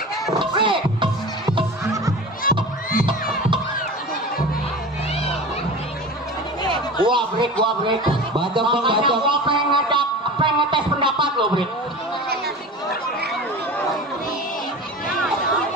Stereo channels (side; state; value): both; normal; correlation 0.33